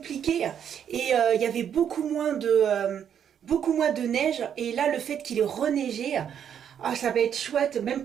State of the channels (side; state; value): left; quieter; 8.7 dB